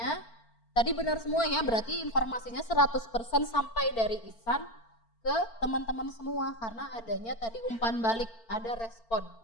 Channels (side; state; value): right; late; 4.4 ms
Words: tadi benar semua ya, berarti informasinya 100% sampai dari Ihsan ke teman-teman semua. Karena adanya tadi umpan balik, ada respon